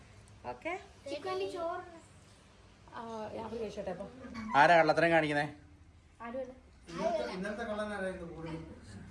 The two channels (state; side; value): identical; both; correlation 1.00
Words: ഓക്കെ, ഞാൻ ചോദിച്ചോട്ടെ. അപ്പൊ ആരാ കള്ളത്തരം കാണിക്കുന്നേ? ആരുമല്ല. ഇന്നത്തെ കള്ളനാരായിരുന്നു?